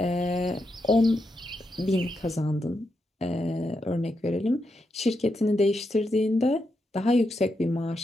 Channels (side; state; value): both; normal; correlation 0.84